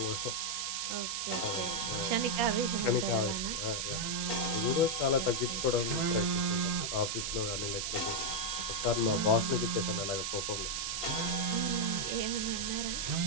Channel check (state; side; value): noise; right; hiss, 1 dB below the sound